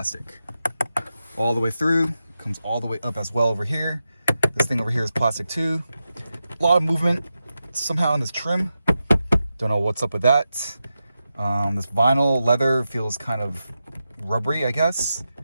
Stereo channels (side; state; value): both; inverted; correlation -0.90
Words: All the way through, comes all the way up as well over here. This thing over here is plastic too. A lot of movement somehow in this trim. Don't know what's up with that. This vinyl leather feels kind of rubbery, I guess.